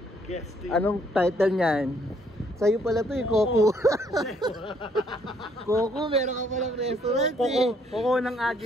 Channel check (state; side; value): normal; both; correlation 0.67